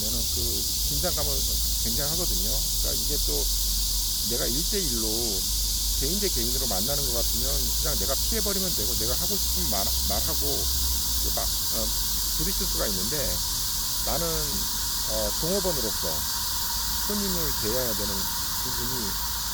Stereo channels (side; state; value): both; identical; correlation 1.00